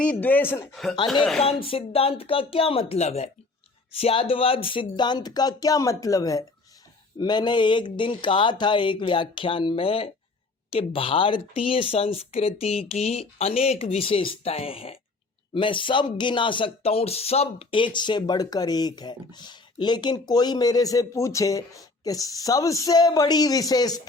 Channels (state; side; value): quieter; right; 3.5 dB